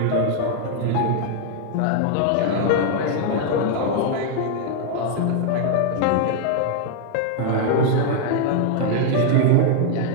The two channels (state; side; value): different; both; correlation 0.00